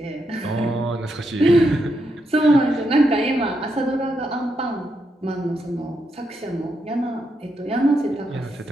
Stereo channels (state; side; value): normal; both; correlation 0.81